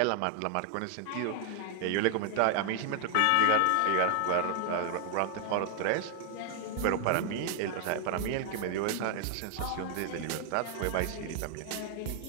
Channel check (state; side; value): different; both; correlation 0.00